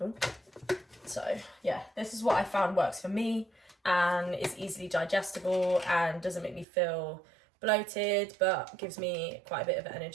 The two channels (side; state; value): left; drops out; at 6.7 s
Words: Ooh. So yeah, this is what I found works for me, and is easily digestible and doesn't make me feel bloated, but gives me quite a bit of